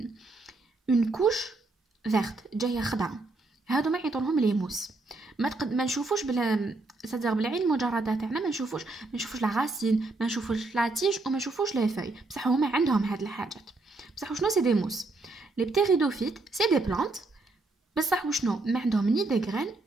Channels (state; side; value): quieter; left; 3.2 dB